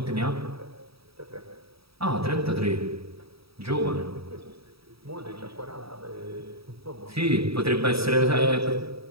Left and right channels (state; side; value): late; left; 0.77 ms